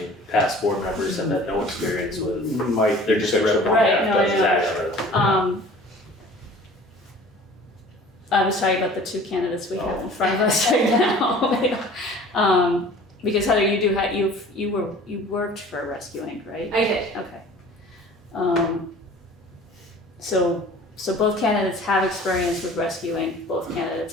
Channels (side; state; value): both; normal; correlation 0.46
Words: past board members have had no experience with, Mike, they're just representing. Right, no, I that's know. exactly. I was talking about the two candidates we have in front of us right now. Because Heather, you worked for Rescue Inc., right? I did. Okay. So both candidates have experience with Rescue Inc. Both